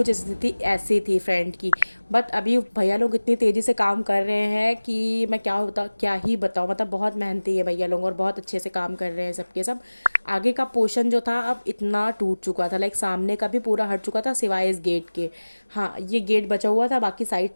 स्थिति ऐसी थी फ्रेंड की, बट अभी भैया लोग इतनी तेज़ी से काम कर रहे हैं कि मैं क्या ही बताऊँ। मतलब बहुत मेहनती है भैया लोग और बहुत अच्छे से काम कर रहे हैं सबके सब। आगे का पोर्शन जो था अब इतना टूट चुका था, लाइक सामने का भी पूरा हट चुका था सिवाय इस गेट के। हाँ, ये गेट बचा हुआ था, बाकी साइड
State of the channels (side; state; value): both; inverted; correlation -1.00